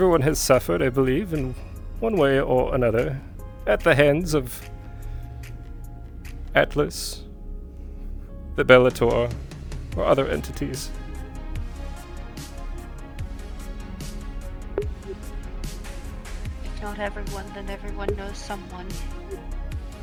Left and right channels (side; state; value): both; identical; correlation 1.00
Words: has suffered, I believe, in one way or another, at the hands of Atlas, the Bellator, or other entities. if not everyone, then everyone knows someone.